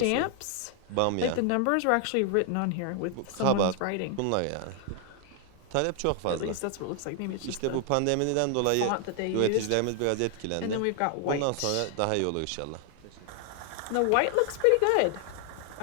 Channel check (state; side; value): different; both; correlation 0.00